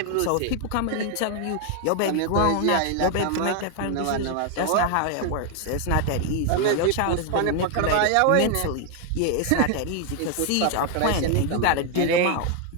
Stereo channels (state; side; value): different; both; correlation 0.01